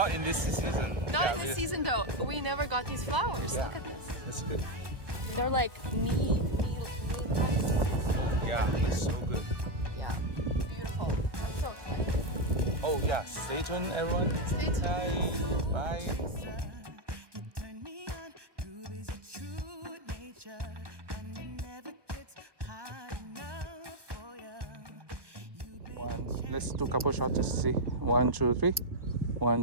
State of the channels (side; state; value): left; late; 1.2 ms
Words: in this season. Not in this season though. We never got these flowers. Yeah. Look at this. That's good. They're like knee Yeah. So good. Yeah. Beautiful. I'm so excited. Oh yeah. Stay tuned, everyone. Stay tuned. Bye. One. Let's do a couple shots to see. 1, 2, 3.